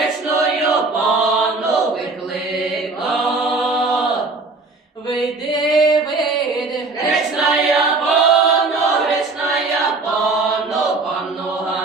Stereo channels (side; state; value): left; quieter; 3.6 dB